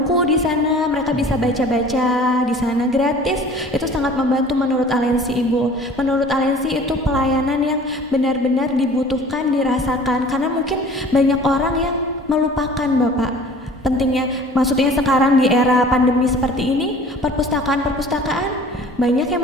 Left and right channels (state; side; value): normal; both; correlation 0.46